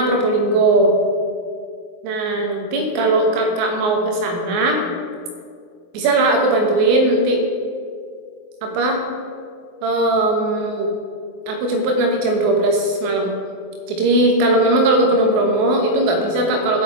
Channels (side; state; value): left; late; 24 ms